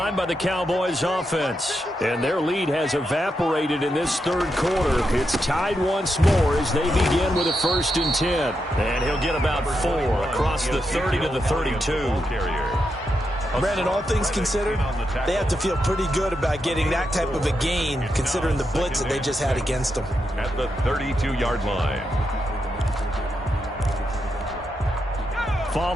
by the Cowboys offense. And their lead has evaporated in this 3rd quarter. It's tied once more as they begin with a 1st and 10. And he'll get about 4 across the 30 to the 32. Brandon, all things considered, they have to feel pretty good about getting that type of a gain, considering the blitz that they just had against them. At the 32-yard line.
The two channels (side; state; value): both; normal; correlation 0.84